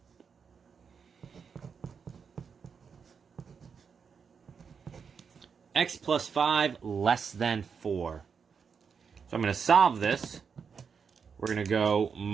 X plus 5 less than 4. So I'm going to solve this. We're going to go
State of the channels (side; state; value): left; quieter; 6.2 dB